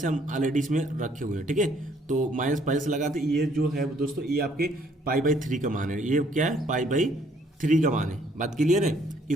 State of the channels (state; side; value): normal; both; correlation 0.64